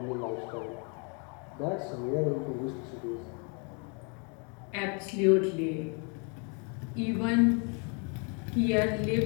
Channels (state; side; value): quieter; right; 36.1 dB